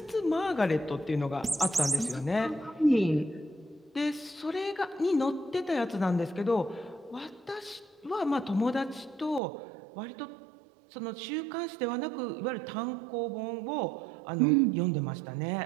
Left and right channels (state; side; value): drops out; left; at 9.4 s